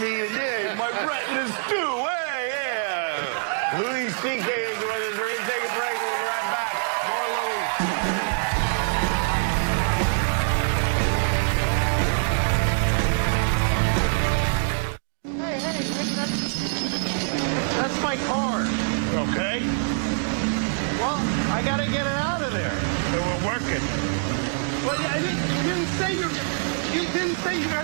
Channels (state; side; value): silent; left; digital silence